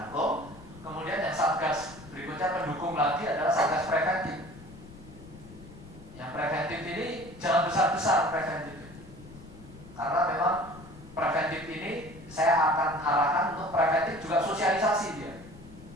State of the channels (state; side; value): noise; left; rumble, 18 dB below the sound